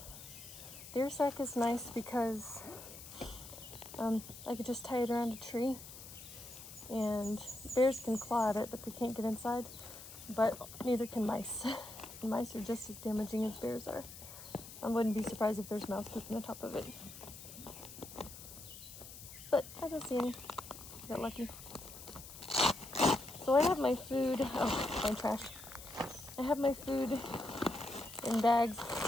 The sack is nice because I could just tie it around a tree, and bears can claw at it, but they can't get inside. But neither can mice. Mice are just as damaging as bears are. I wouldn't be surprised if there's mouse poop on the top of it. But I don't see any. Got lucky. So I have my food. Oh, my trash. I have my food in bags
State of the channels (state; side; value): noise; left; hiss, 14 dB below the sound